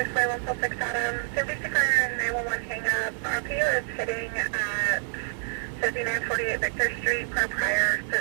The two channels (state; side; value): silent; left; digital silence